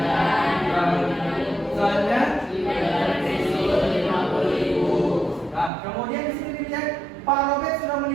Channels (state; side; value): drops out; left; at 5.7 s